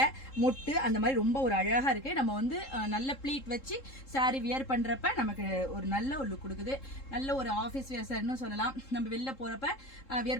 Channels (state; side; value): late; right; 3.7 ms